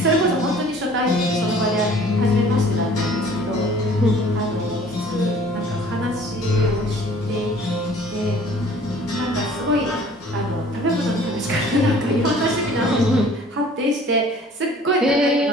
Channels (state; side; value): normal; both; correlation 0.51